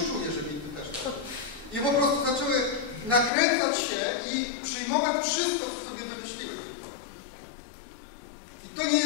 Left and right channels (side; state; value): right; drops out; at 3.3 s